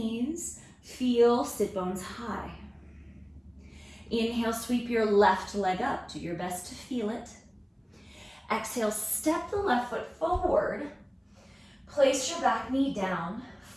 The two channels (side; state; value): both; identical; correlation 1.00